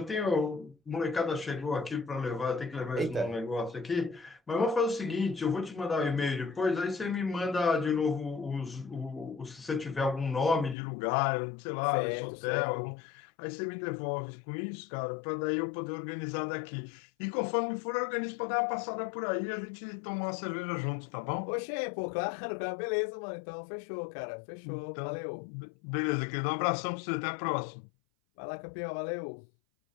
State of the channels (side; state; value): right; drops out; at 10.8 s